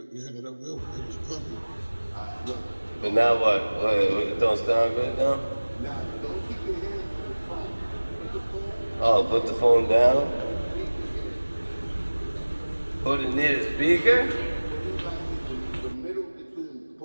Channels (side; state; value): both; inverted; correlation -1.00